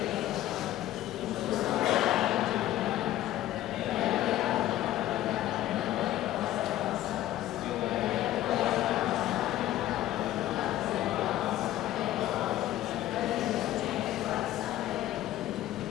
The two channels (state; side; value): quieter; right; 14.0 dB